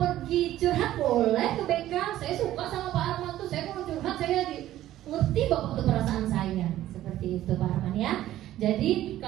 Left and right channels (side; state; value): left; quieter; 13.7 dB